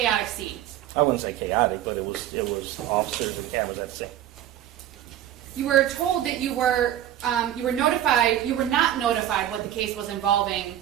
scene. I wouldn't say chaotic, but it was officers and cameras at the scene. You were told that you were notified. You were not notified what the case was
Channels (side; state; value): left; quieter; 11.8 dB